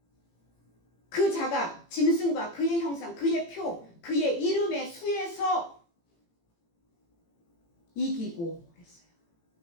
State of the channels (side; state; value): right; late; 18 ms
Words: 그 자가 짐승과 그의 형상, 그의 표, 그의 이름의 수에서 이기고 했어요.